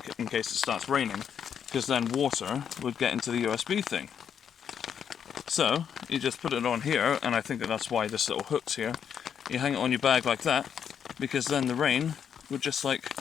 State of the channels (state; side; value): quieter; right; 8.0 dB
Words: case it starts raining, because then water would get into the USB thing. So, you just put it on here, and I think that's why this little hook's here. You hang it on your bag like that, because then the rain would just like